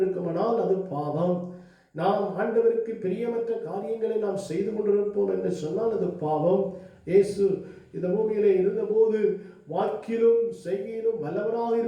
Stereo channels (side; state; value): both; identical; correlation 1.00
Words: அது பாவம். நாம் ஆண்டவருக்கு பிரியமற்ற காரியங்களை நாம் செய்து கொண்டிருப்போம் என்று சொன்னால் அது பாவம். இயேசு இந்த பூமியிலே இருந்தபோது வாக்கிலும் செய்கையிலும் வல்லவராக